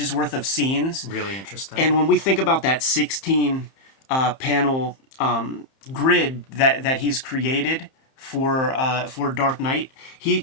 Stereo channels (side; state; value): right; late; 31 ms